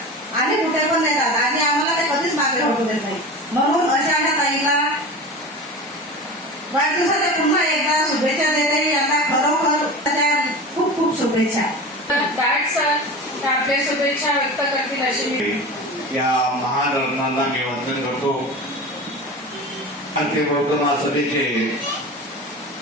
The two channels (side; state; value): both; normal; correlation 0.31